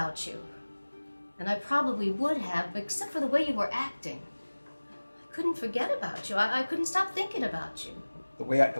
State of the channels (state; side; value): inverted; both; correlation -1.00